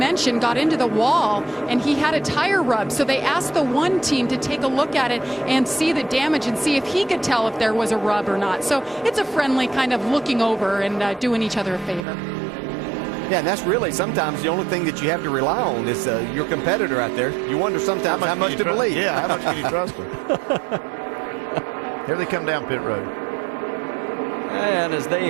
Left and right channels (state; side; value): drops out; left; at 12.1 s